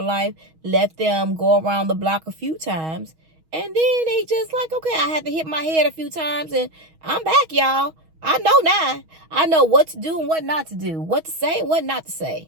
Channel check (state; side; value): late; left; 6.3 ms